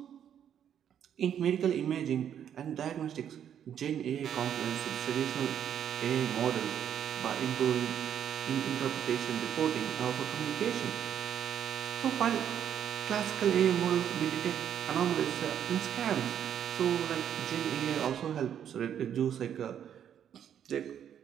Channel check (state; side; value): quieter; left; 9.3 dB